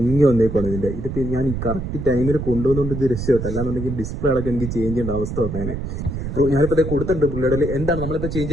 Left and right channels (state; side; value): noise; right; rumble, 5 dB below the sound